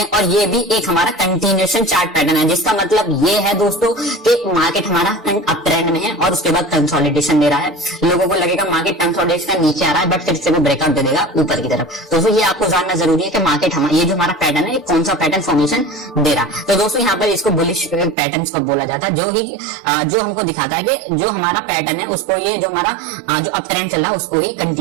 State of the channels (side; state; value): left; drops out; at 18.2 s